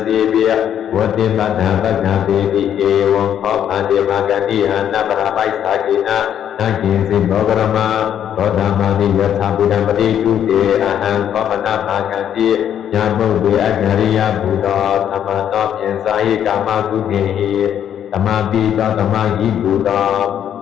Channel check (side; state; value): right; quieter; 9.7 dB